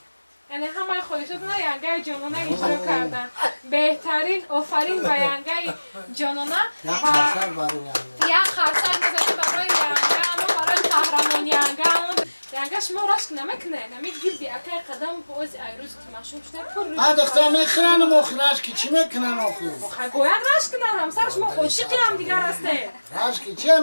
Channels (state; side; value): inverted; both; correlation -1.00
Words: یعنی همه خودشون نه ینگه جانانه اجرا کردن. بهترین آفرین به ینگه جانانه یک خرسر برای ینگه یک خرسر بزنید برای ینگه اما برای قهرمان ینگه ینگه شما رشک نمیکنه نمیگیردی اکای قدم باز ایروز که مشهور شده پر دختر میخرن و مخرش که چی میکنن آخو باید رشک کنن همسر شما عاشقی هم دیگر هسته رشک که چی